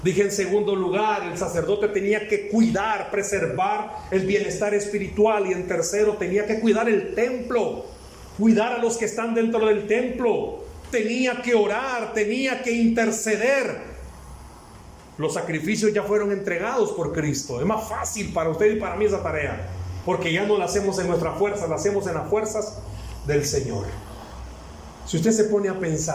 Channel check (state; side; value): identical; both; correlation 1.00